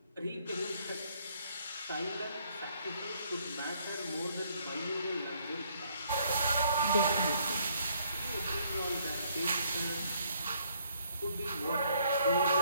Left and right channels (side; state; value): both; inverted; correlation -0.66